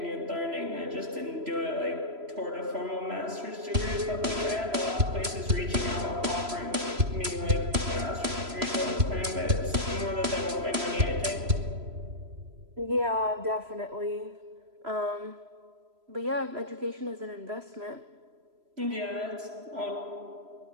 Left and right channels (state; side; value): late; left; 3.0 ms